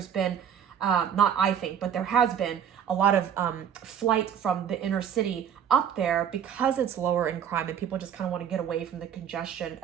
been, but there has been a lot of flight from the inner city up there because it's lower in crime and people just kind of want to get away from the congestion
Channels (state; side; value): quieter; left; 8.8 dB